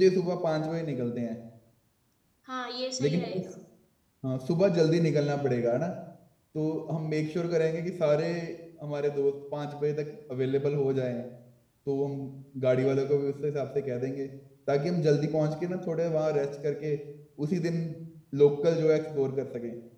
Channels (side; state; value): both; identical; correlation 1.00